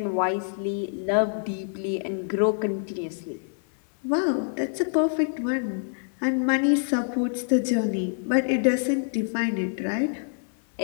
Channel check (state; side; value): silent; right; 61 dB below the other